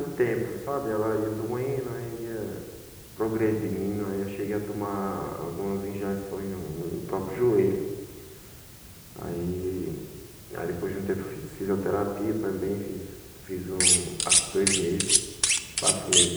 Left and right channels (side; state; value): both; identical; correlation 1.00